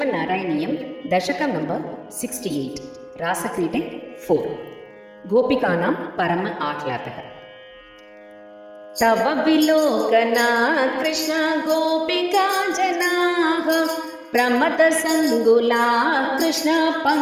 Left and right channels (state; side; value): identical; both; correlation 1.00